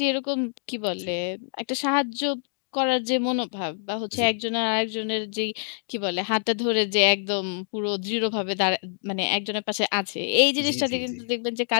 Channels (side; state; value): right; silent; digital silence